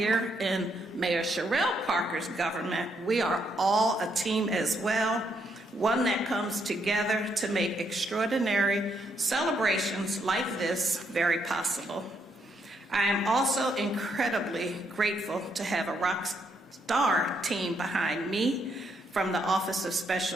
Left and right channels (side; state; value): both; normal; correlation 0.75